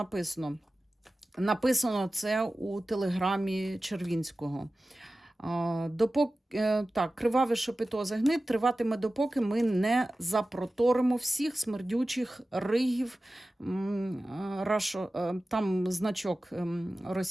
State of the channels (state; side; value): normal; both; correlation 0.95